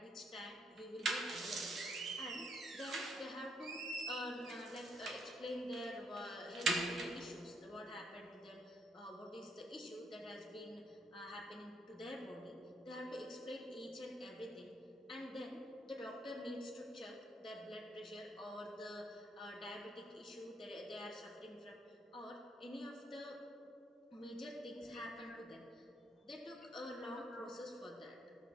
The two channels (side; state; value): both; normal; correlation 0.71